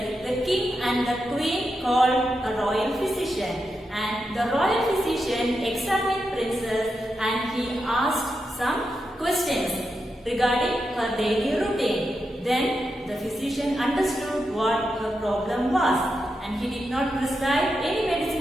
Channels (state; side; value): normal; both; correlation 0.86